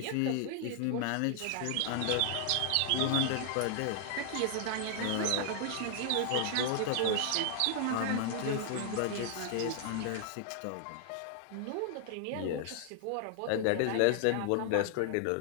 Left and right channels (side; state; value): both; different; correlation 0.00